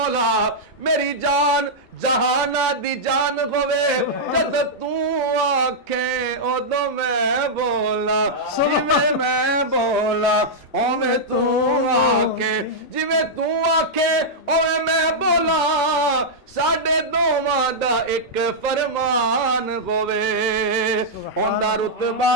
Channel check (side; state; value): both; normal; correlation -0.08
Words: मेरी जान जहाना दी जान होवे, जद तू आखे उदों मैं बोला, जिवें मैं बोला ओवें तू आखे, जिवें तू आखे ओवें मैं बोला, साडे दोवां दा एक फरमान होवे। उंदा रुतबा